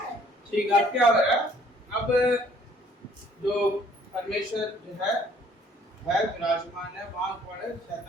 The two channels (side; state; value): both; normal; correlation 0.60